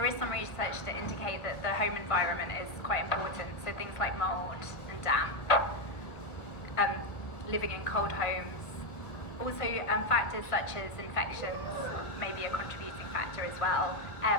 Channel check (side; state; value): right; late; 1.2 ms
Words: is some research to indicate that the home environment is quite important. So things like mold and damp, living in cold homes. Also, factors such as infections may be a contributing factor as well,